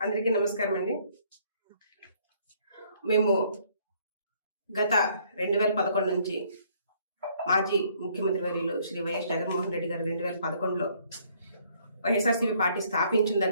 అందరికీ నమస్కారం అండి. మేము గత 2011 నుంచి మాజీ ముఖ్యమంత్రి వర్యులు శ్రీ వైఎస్ జగన్మోహన్ రెడ్డి గారు 2011లో వైఎస్ఆర్సీపీ పార్టీ స్థాపించిన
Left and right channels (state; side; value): inverted; both; correlation -0.64